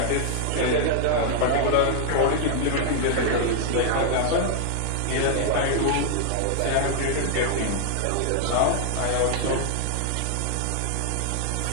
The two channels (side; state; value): both; different; correlation -0.01